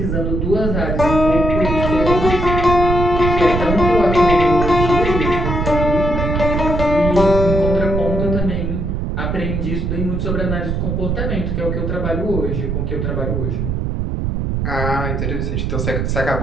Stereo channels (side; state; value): right; noise; rumble, 1 dB below the sound